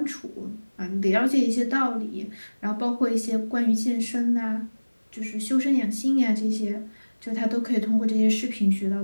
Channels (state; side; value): inverted; both; correlation -1.00